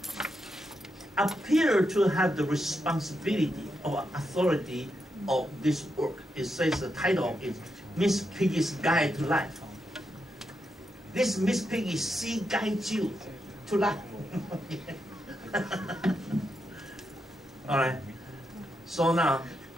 appeared to have the responsibility or authority of this work. It says the title is Miss Piggy's Guide to Life. This Miss Piggy, she guides you to life. All right. So now,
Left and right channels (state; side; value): normal; both; correlation 0.84